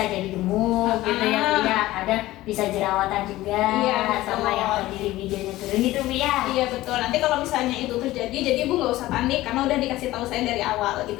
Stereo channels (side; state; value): right; quieter; 16.8 dB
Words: jadi gemuk gitu ya bu ya, ada bisa jerawatan juga, sama yang tadi libidonya turun gitu bu ya. Iya betul. Nanti kalau misalnya itu terjadi, jadi ibu nggak usah panik karena udah dikasih tahu saya dari awal gitu